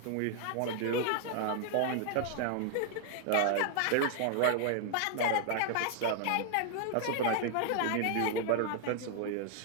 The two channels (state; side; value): different; both; correlation 0.00